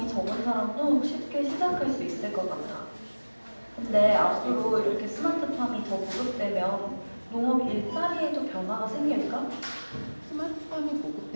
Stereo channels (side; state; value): both; inverted; correlation -1.00